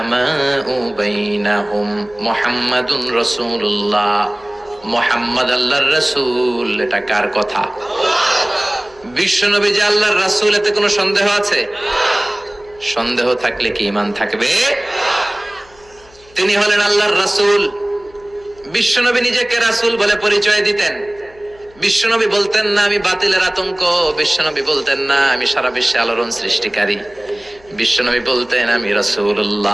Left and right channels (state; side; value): noise; left; hum, 27 dB below the sound